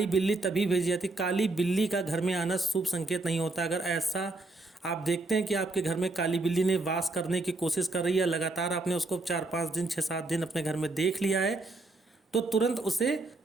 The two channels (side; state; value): left; quieter; 3.1 dB